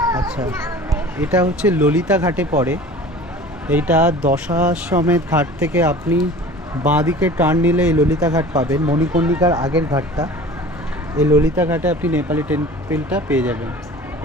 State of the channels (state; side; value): normal; both; correlation 0.42